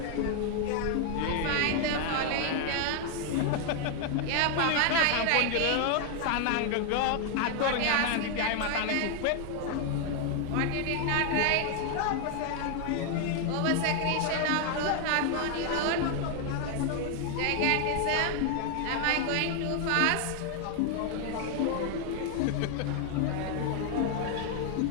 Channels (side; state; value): both; different; correlation 0.00